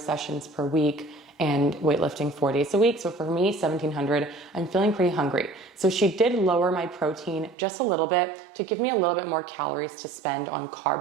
per week, and weightlifting 4 days a week. So for me, 1,700, I'm feeling pretty hungry. So she did lower my protein just a little bit to give me a little bit more calories to spend on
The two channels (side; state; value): left; drops out; at 7.6 s